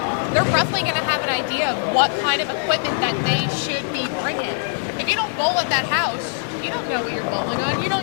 they're roughly going to have an idea of what kind of equipment that they should be bringing. If you don't bowl at that house, you don't know what you're bowling on. You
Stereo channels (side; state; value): right; silent; digital silence